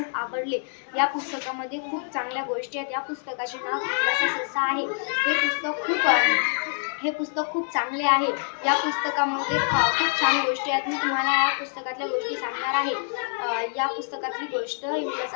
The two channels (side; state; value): right; silent; 57 dB below the other